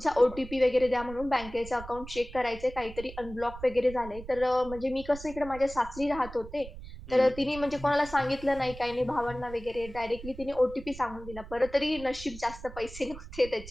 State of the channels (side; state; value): right; noise; rumble, 14 dB below the sound